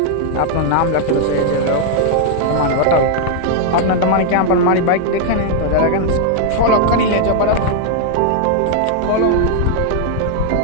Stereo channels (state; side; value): different; both; correlation 0.00